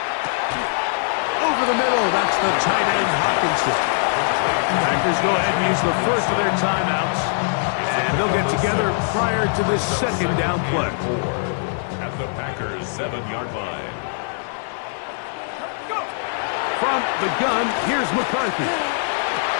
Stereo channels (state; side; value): silent; right; 60 dB below the other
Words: Over the middle, that's the tight end Hawkinson. Packers go ahead and use the first of their timeouts. And they'll get together prior to this second down play. At the Packers' 7-yard line. From the gun, here's McCarthy.